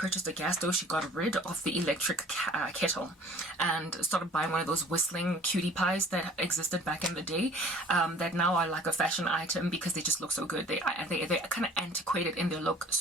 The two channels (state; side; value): normal; both; correlation 0.51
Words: a gas stove, she got rid of the electric kettle and started buying one of those whistling cutie pies that existed back in the day, that now are like a fashion item because they just look so good. They're kind of antiquated in their look,